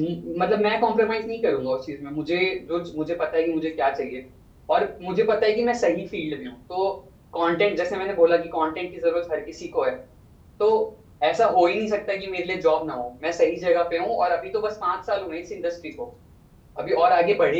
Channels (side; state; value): both; identical; correlation 1.00